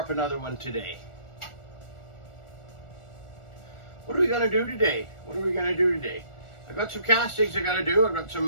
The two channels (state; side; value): late; right; 1.4 ms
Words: up another one today. What are we gonna do today? I've got some castings I gotta do. I've got